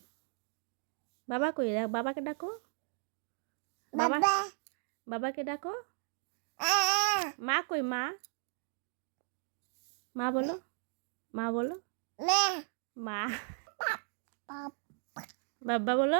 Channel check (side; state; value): left; silent; 54 dB below the other